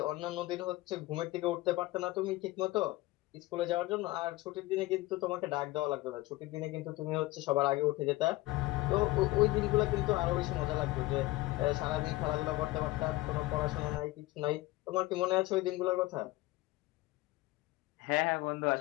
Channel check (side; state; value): right; quieter; 19.3 dB